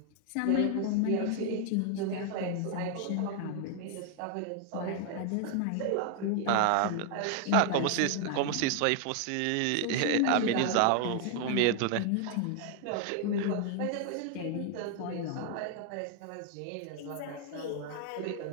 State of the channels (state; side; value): different; both; correlation 0.00